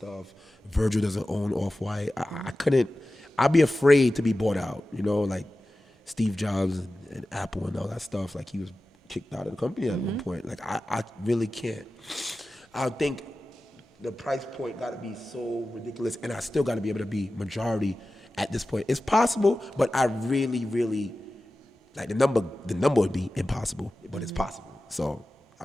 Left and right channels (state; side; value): normal; both; correlation 0.95